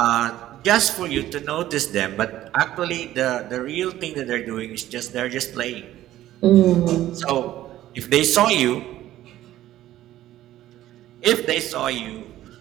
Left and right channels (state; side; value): quieter; left; 13.9 dB